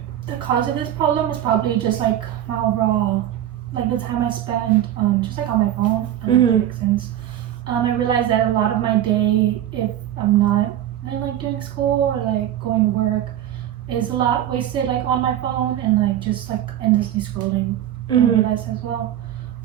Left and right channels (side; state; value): left; quieter; 11.7 dB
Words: the cause of this problem is probably just like my overall, like the time I spend just like on my phone. I don't know if that makes sense. I realized that a lot of my day, if I'm not like doing school or like going to work, is a lot wasted like on my phone and like just like endlessly scrolling. I realized as well.